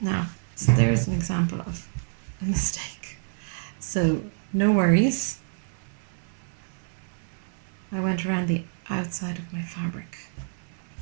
so there's an example of a mistake. So no worries. I went around the outside of my fabric.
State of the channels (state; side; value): silent; left; 60 dB below the other